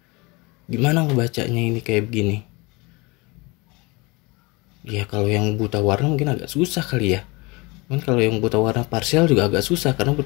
Gimana ngebacanya ini kayak begini? Ya kalau yang buta warna mungkin agak susah kali ya. Cuman kalau yang buta warna parsial juga agak susah, karena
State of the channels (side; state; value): right; quieter; 25.6 dB